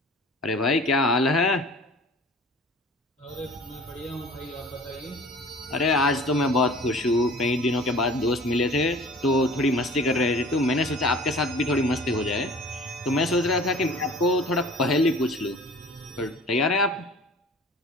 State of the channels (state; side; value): normal; both; correlation 0.45